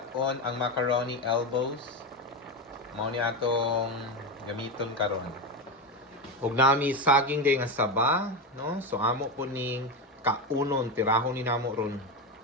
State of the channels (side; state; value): both; normal; correlation 0.15